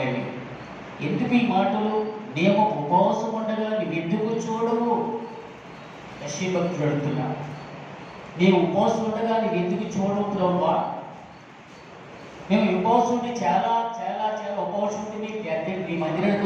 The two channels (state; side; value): identical; both; correlation 1.00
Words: ఎందుకు ఈ మాటలు? మేము ఉపవాసం ఉండగా నువ్వెందుకు చూడవు? యెషయా భక్తుడు అడుగుతున్నాడు. మేము ఉపవాసం ఉండగా నువ్వెందుకు చూడవు ప్రభువా? మేము ఉపవాసం ఉండి చాలా చాలా చాలా ఉపవాసం ఉండి నీ